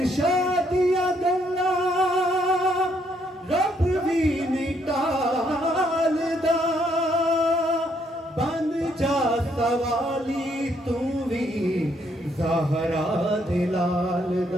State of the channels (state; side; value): normal; both; correlation 0.71